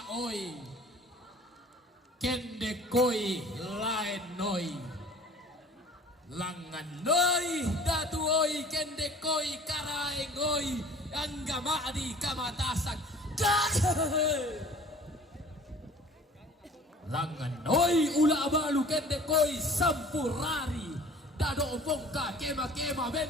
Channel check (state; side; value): normal; both; correlation 0.48